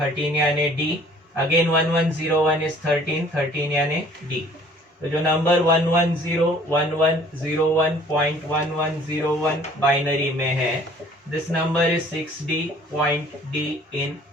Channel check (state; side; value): normal; both; correlation 0.54